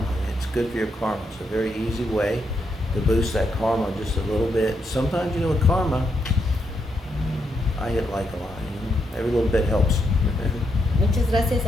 It's good for your karma. It's a very easy way to boost that karma just a little bit. Sometimes, with karma, I hit like a lot. Every little bit helps. Muchas gracias,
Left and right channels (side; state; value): both; normal; correlation 0.80